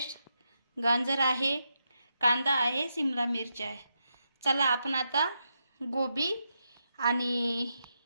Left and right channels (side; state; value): both; inverted; correlation -0.84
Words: गाजर आहे, कांदा आहे, शिमला मिरची आहे। चला आपण आता गोबी आणि